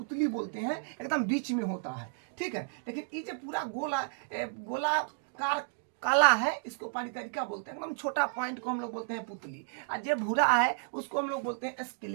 बोलते हैं, एकदम बीच में होता है। ठीक है, लेकिन ये जो पूरा गोलाकार काला है इसको परितरिका बोलते हैं, एकदम छोटा पॉइंट को हम लोग बोलते हैं पुतली, और जो भूरा है उसको हम लोग बोलते हैं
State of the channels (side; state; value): left; silent; digital silence